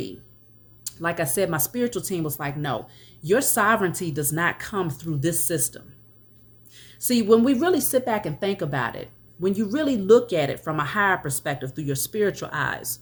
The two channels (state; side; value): identical; both; correlation 1.00